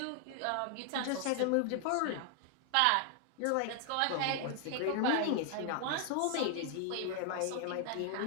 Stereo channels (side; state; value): both; different; correlation 0.00